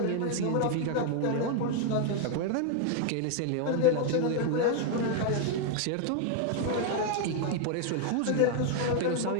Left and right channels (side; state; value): both; different; correlation 0.00